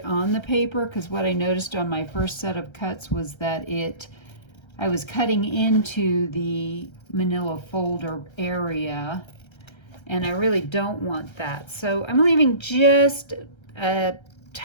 on the paper, because what I noticed on my first set of cuts was that I was cutting into the manila folder area and I really don't want that. So I'm leaving just a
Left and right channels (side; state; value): right; late; 1.3 ms